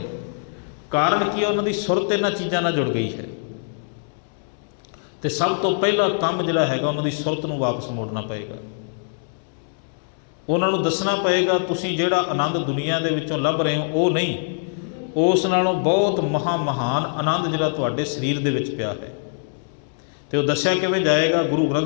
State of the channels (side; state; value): right; silent; digital silence